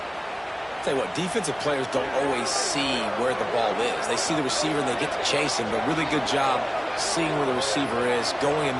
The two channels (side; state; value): both; identical; correlation 1.00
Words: Tell you what, defensive players don't always see where the ball is. They see the receiver and they get to chase him, but really good job seeing where the receiver is, going and